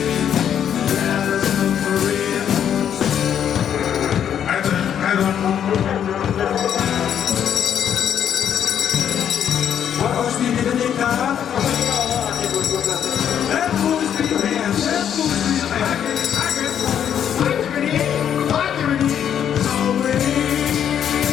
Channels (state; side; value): quieter; right; 9.1 dB